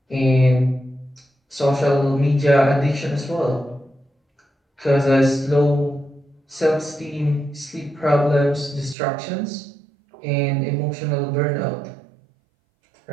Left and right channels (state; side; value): drops out; left; at 9.0 s